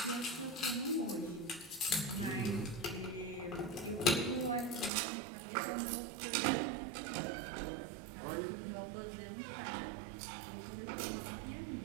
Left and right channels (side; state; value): left; drops out; at 4.9 s